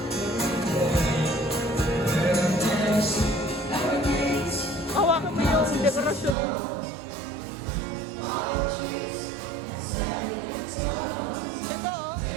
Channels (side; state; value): left; drops out; at 6.4 s